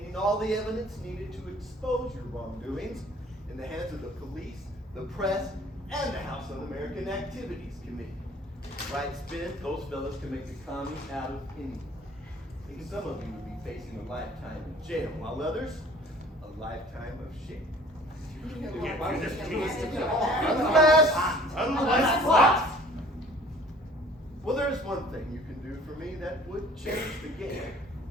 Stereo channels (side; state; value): both; normal; correlation 0.51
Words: all the evidence needed to expose your wrongdoings in the hands of the police, the press, and the House Un-American Activities Committee. Right spin, those fellas can make the commies out of anyone. And some of you would be facing a lifetime in jail, while others, a lifetime of shame. Unless what? Well, there's one thing you can do for me that would change the game.